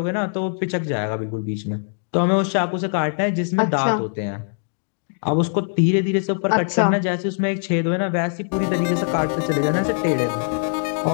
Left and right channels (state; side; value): silent; right; digital silence